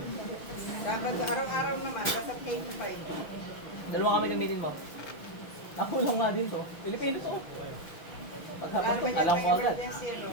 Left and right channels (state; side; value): late; right; 6.2 ms